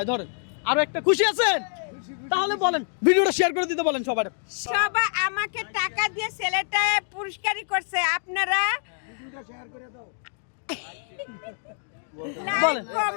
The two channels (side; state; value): right; silent; 61 dB below the other